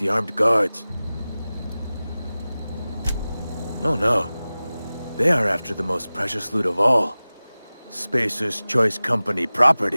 armed guards. Oh no. They are after the most precious loot of all. Spacer's Choice Company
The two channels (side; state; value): both; inverted; correlation -0.97